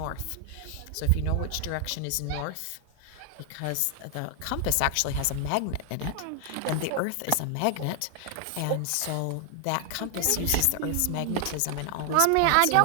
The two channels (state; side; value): different; both; correlation 0.00